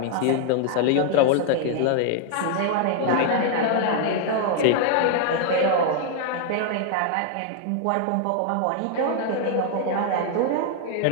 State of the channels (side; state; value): both; different; correlation 0.00